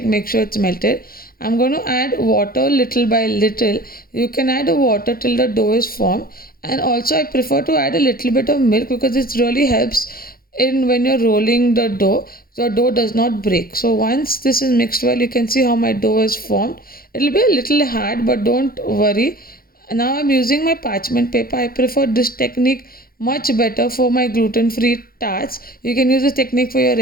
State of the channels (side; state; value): right; late; 0.43 ms